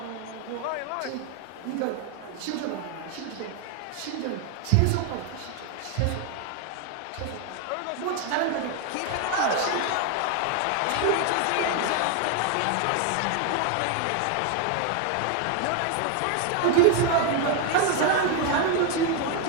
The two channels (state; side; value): different; both; correlation 0.01